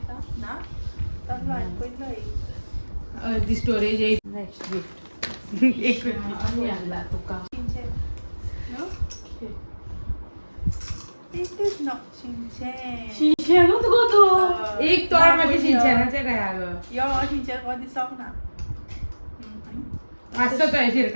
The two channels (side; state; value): both; inverted; correlation -1.00